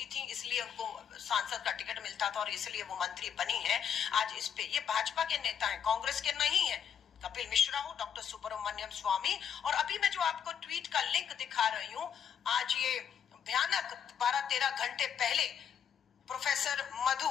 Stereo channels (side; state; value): right; quieter; 8.2 dB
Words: थी, इसलिए उनको सांसद का टिकट मिलता था और इसलिए वो मंत्री बनी है। आज इस पे ये भाजपा के नेता हैं, कांग्रेस के नहीं है। कपिल मिश्रा हो, डॉक्टर सुब्रमण्यम स्वामी, और अभी मैं जो आपको ट्वीट का लिंक दिखा रही हूँ, आज ये भयानक 12-13 घंटे पहले प्रोफेसर मधु